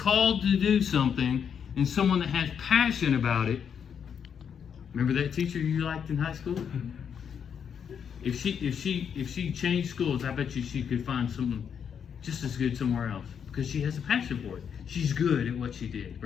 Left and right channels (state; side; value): quieter; right; 7.6 dB